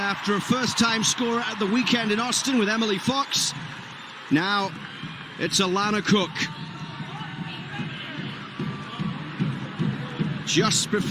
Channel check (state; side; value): identical; both; correlation 1.00